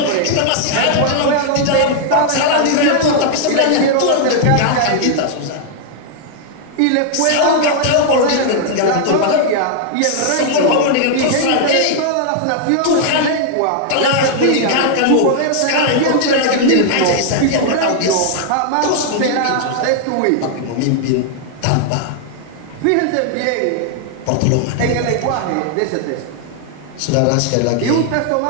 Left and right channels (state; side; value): different; both; correlation 0.00